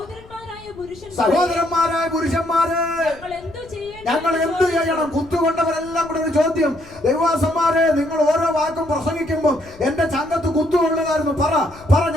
പുരുഷന്മാരെ ഞങ്ങൾ എന്ത് ചെയ്യണം? കുത്തുകൊണ്ടവരെല്ലാം കൂടെ ഒരു ചോദ്യം. ദൈവദാസന്മാരെ, നിങ്ങൾ ഓരോ വാക്കും പ്രസംഗിക്കുമ്പോൾ എന്റെ ചങ്കത്ത് കുത്തുകൊള്ളുകായിരുന്നു. പറ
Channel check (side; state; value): left; noise; rumble, 21 dB below the sound